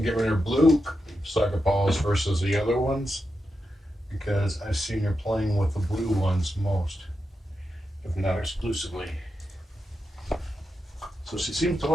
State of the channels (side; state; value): both; normal; correlation 0.88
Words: getting her blue soccer balls versus the other ones because I've seen her playing with the blue ones most, if not exclusively. So she seems to